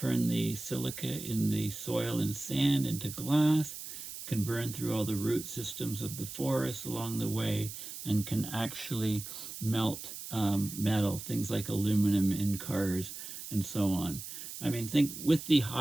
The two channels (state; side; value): noise; right; hiss, 10 dB below the sound